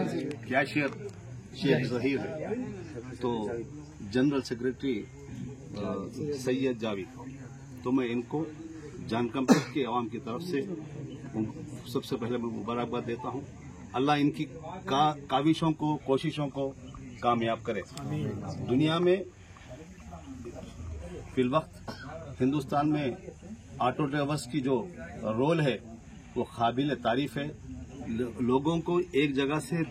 कैशियर शेख जहीर है, तो जनरल सेक्रेटरी सैयद जावेद। तो मैं इनको जानकंपेट के अवाम की तरफ से सबसे पहले मैं मुबारकबाद देता हूँ। अल्लाह इनकी काविशों को, कोशिशों को कामयाब करे। दुनिया में फिलवक्त हिंदुस्तान में ऑटो ड्राइवर्स की जो रोल है वो काबिल तारीफ है। लोगों को एक जगह से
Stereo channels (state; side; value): identical; both; correlation 1.00